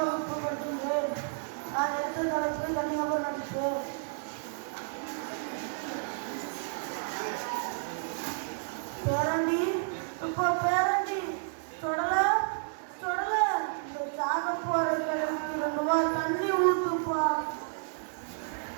வகுப்பு படிக்கின்றேன். நான் எடுத்த தலைப்பு தனிநபர் நடிப்பு. பேரண்டி இப்போ பேரண்டி தொடல தொடல இந்த சாக போற கிழமைக்கு 2 வாரம் தண்ணி ஊத்துப்பா.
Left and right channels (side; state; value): left; silent; digital silence